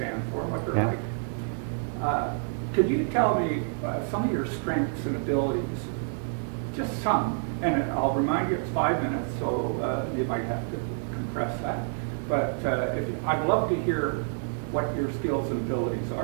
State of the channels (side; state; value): left; silent; digital silence